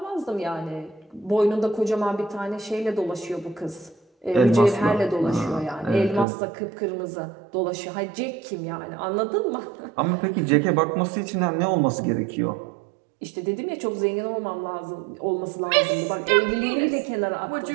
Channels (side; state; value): left; drops out; at 6.2 s